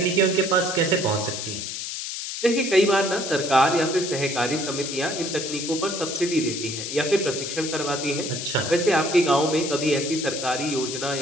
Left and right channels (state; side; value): noise; left; hiss, 5 dB below the sound